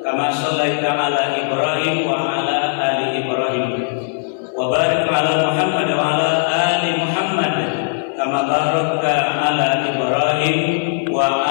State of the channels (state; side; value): silent; right; digital silence